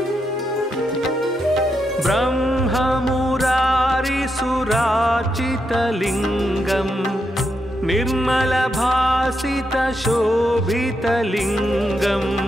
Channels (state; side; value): normal; both; correlation 0.83